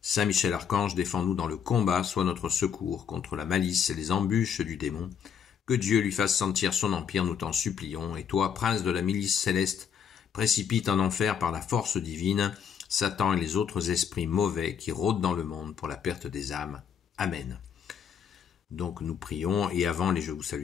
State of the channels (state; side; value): quieter; right; 7.7 dB